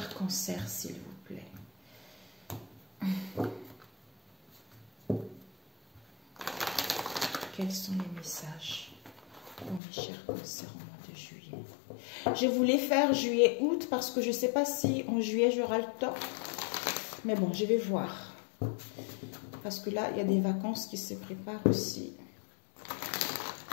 cancers, s'il vous plaît. Quels sont les messages pour mes chers cancers au mois de juillet? Je voulais faire juillet-août parce que je ne sais pas si en juillet j'aurai le temps. Mais bon, je vais voir. Parce que là, il y a des vacances qui se préparent aussi.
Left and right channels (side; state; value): right; drops out; at 9.8 s